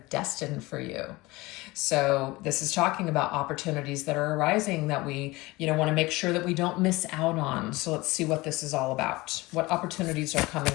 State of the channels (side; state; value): right; quieter; 21.5 dB